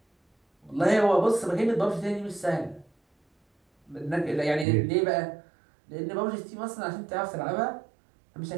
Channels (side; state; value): left; drops out; at 4.7 s